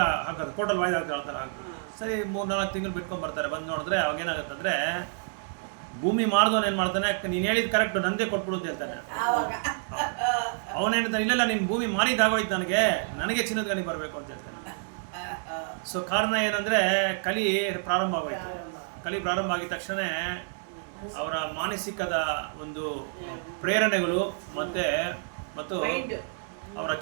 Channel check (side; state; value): left; silent; 59 dB below the other